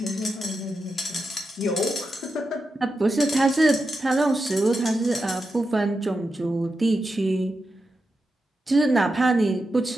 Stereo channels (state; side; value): normal; both; correlation 0.88